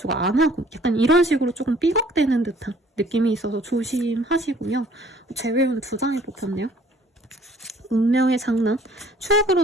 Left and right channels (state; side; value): normal; both; correlation 0.57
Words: 안 하고, 약간 이런 식으로 조금 삐걱대는 듯한 느낌이 있어서 조심하시고요. 재회운 2장이 뽑혔네요. 운명의 장난, 추억으로